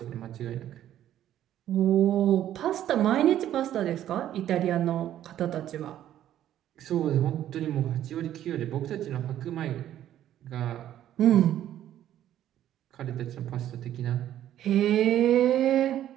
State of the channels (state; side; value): quieter; left; 11.8 dB